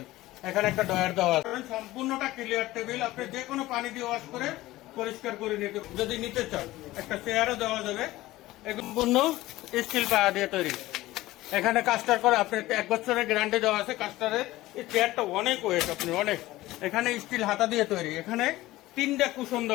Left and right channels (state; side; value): quieter; right; 17.3 dB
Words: এখানে একটা ডয়ার দেওয়া আছে। সম্পূর্ণটা ক্লিয়ার টেবিল, আপনি যে কোনো পানি দিয়ে ওয়াশ করে পরিষ্কার করে নিতে, যদি নিতে চান একটা চেয়ারও দেওয়া যাবে। সম্পূর্ণ স্টিল পায়া দিয়ে তৈরি। এখানে কাস্টার করে আপনি 1 বছরের গ্যারান্টি দেওয়া আছে কাস্টারের। এই চেয়ারটা অনেক ওয়েট, আপনি অনেক। এখানে স্টিল হাতা দিয়ে তৈরি, এখানে 3টা কুশন